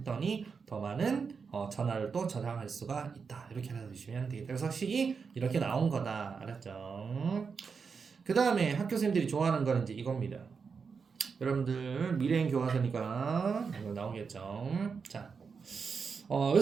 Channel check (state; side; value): quieter; left; 5.5 dB